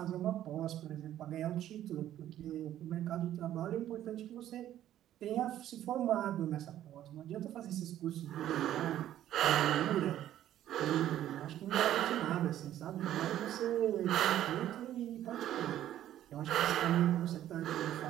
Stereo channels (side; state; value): left; quieter; 12.2 dB